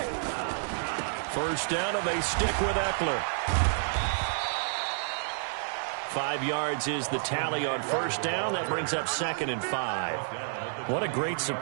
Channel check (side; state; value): left; silent; 56 dB below the other